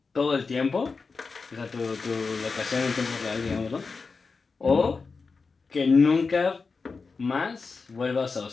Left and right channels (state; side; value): quieter; right; 4.5 dB